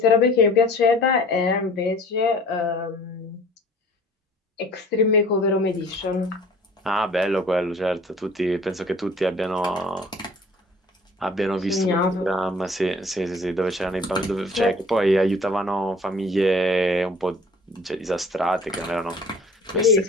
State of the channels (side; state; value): both; normal; correlation 0.49